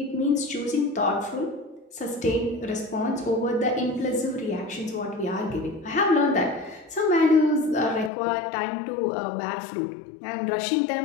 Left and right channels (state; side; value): drops out; right; at 8.1 s